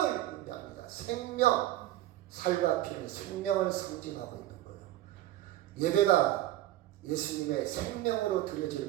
의미합니다. 생명, 살과 피는 생명을 상징하고 있는 거예요. 예배가 예수님의 생명으로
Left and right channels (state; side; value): quieter; left; 14.7 dB